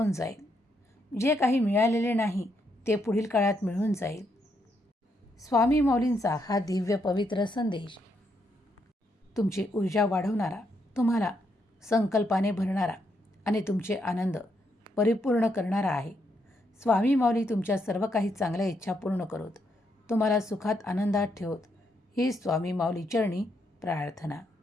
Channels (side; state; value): both; normal; correlation 0.77